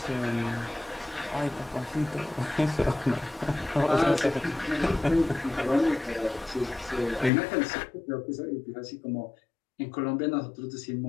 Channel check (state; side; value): drops out; right; at 7.3 s